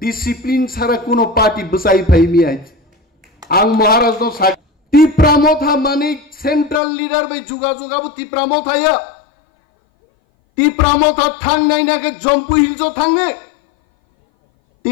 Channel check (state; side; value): drops out; right; at 6.8 s